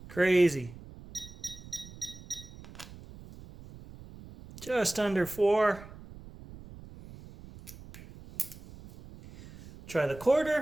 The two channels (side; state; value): right; noise; rumble, 17 dB below the sound